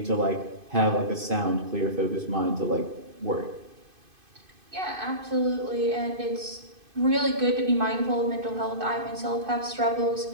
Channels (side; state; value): left; late; 2.5 ms